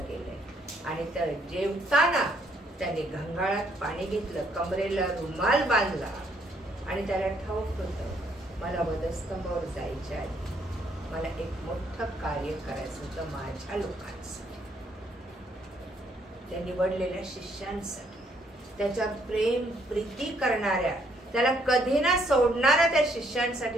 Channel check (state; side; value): normal; both; correlation 0.69